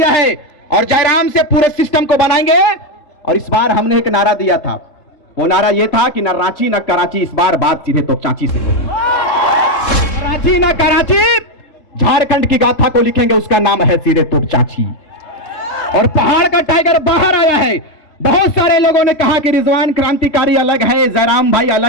है और जयराम से पूरे सिस्टम को बनाएंगे। और इस बार हमने एक नारा दिया था, वो नारा ये था कि न रांची न कराची, इस बार बात सीधे तो चाची से। रांची न कराची, झारखंड की गाथा को लिखेंगे, उसका नाम है सीधे तो चाची। और पहाड़ का टाइगर बाहर आया है। बहुत सारे लोगों ने कहा कि रिजवान क्रांतिकारी अलग है, जयराम भाई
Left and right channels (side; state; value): right; late; 3.7 ms